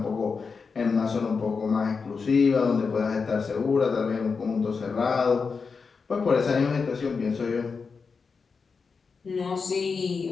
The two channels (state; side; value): quieter; right; 5.1 dB